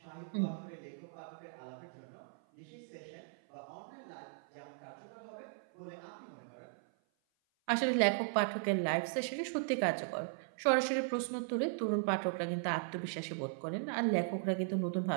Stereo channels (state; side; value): silent; left; 53 dB below the other